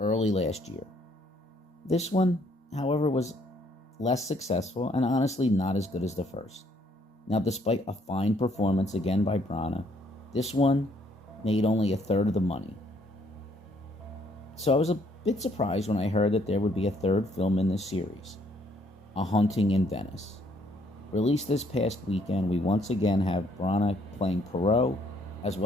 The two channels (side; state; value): both; normal; correlation 0.66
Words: last year. This one, however, was less successful and honestly not as good as the first. Now, despite a fine performance again by Branagh, this one made only a third of the money. So I was a bit surprised when I heard that there would be a third film in this series, A Haunting in Venice. Released this past weekend, we once again have Branagh playing Poirot as